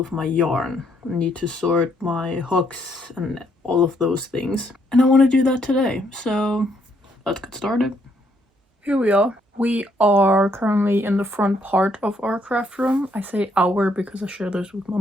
my yarn. I need to sort my hooks and all of those things. And I want to do that today, so let's get started. Here we are. We are currently in the front part of our craft room. I say our because I share this with my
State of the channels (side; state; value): both; normal; correlation 0.71